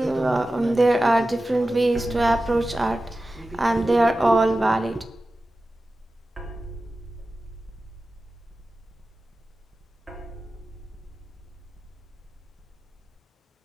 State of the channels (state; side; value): normal; both; correlation 0.94